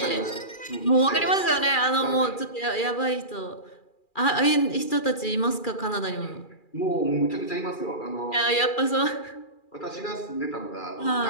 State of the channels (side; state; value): right; late; 2.4 ms